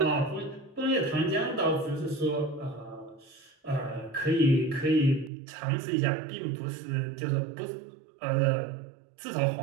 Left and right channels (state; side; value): drops out; left; at 5.3 s